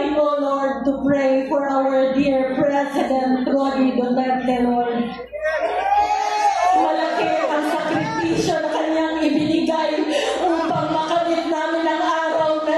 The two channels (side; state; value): both; identical; correlation 1.00